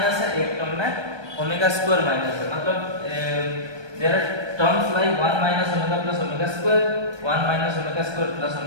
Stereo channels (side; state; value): left; late; 1.2 ms